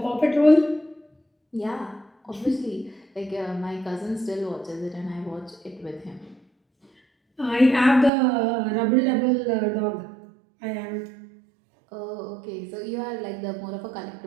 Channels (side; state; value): left; drops out; at 8.1 s